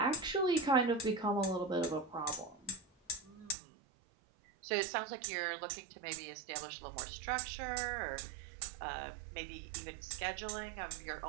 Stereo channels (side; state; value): left; drops out; at 3.6 s